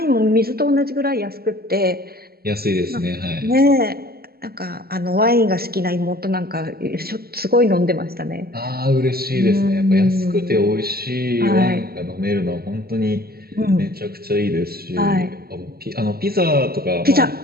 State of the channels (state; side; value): late; left; 0.45 ms